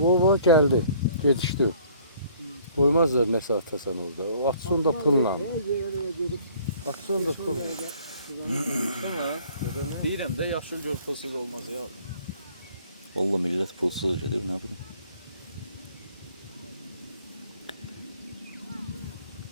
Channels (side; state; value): both; inverted; correlation -0.56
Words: O geldi. Yetişti o. Koymazlar ne saate sen orada. O atsın da pılla. Atsın da pılla. Sonra deyirəm də yaşıl göz fosili olmaz ya. Valla millət pulsuz gedir, nə bilim.